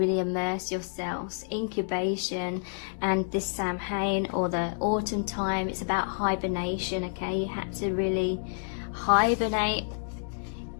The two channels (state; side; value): silent; right; digital silence